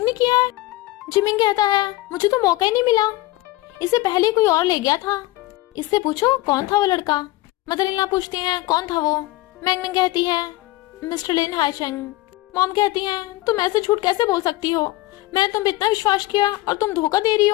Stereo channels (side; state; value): right; quieter; 18.3 dB